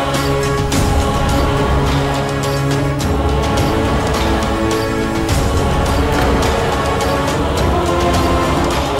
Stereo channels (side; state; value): both; identical; correlation 1.00